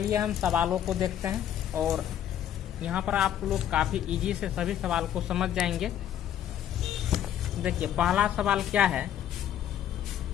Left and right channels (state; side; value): quieter; right; 10.5 dB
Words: हम सवालों को देखते हैं, और यहाँ पर आप लोग काफ़ी इजी से सभी सवाल को समझ जाएंगे। देखिए पहला सवाल क्या है